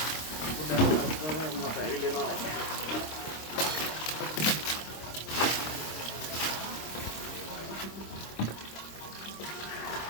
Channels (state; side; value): late; right; 26 ms